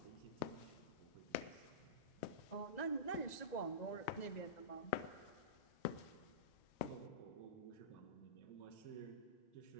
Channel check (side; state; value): right; late; 1.9 ms